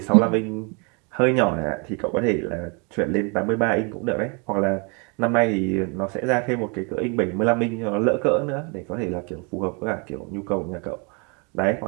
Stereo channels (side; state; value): left; quieter; 33.0 dB